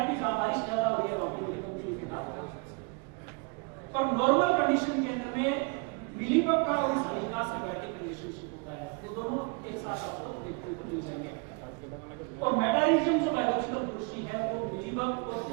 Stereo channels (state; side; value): quieter; left; 33.0 dB